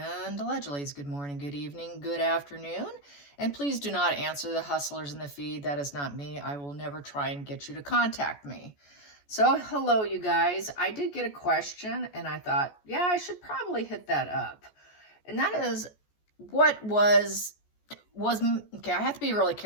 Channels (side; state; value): right; late; 14 ms